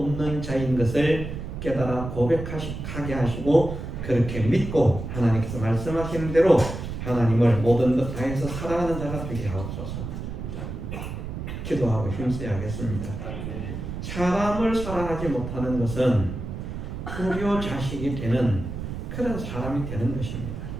자인 것을 깨달아 고백하게 하시고 그렇게 믿고 하나님께서 말씀하시는 대로 하나님을 모든 것 다해서 사랑하는 자가 되게 하옵소서. 기도하고 힘써야겠습니다. 사람을 사랑하지 못하는 것은 불효 자식이 되는 그런 사람이 되는 것입니다.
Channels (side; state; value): right; noise; rumble, 7 dB below the sound